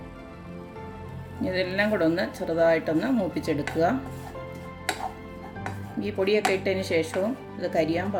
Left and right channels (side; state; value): both; identical; correlation 1.00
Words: ഇതെല്ലാം കൂടെ ഒന്ന് ചെറുതായിട്ടൊന്ന് മൂപ്പിച്ചെടുക്കുക. ഈ പൊടിയൊക്കെ ഇട്ടതിന് ശേഷവും ഇത് കരിയാൻ